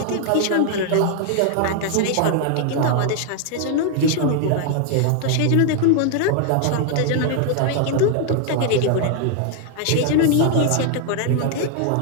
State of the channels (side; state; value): both; different; correlation 0.00